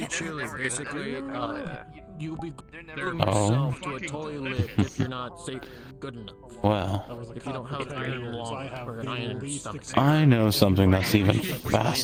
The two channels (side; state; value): both; identical; correlation 1.00